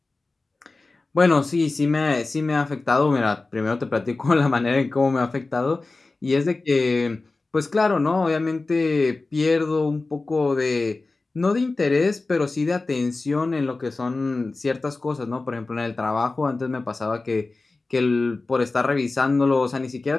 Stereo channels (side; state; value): right; quieter; 3.5 dB